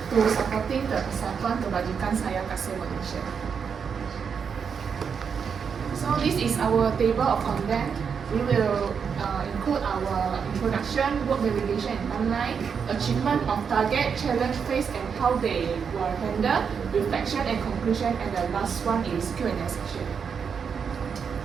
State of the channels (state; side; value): quieter; left; 6.5 dB